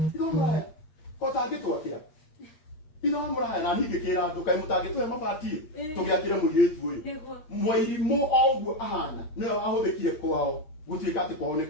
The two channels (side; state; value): right; late; 8.6 ms